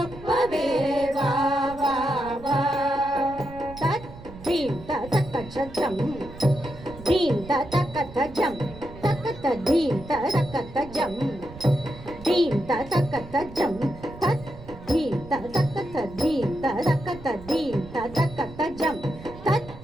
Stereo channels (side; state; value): right; noise; rumble, 16 dB below the sound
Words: வா வா வா. Dream ta takata jam, dream ta takata jam, takata dream ta takata jam, dream ta takata jam, tat dream ta takata dream ta takata dream ta takata jam, tat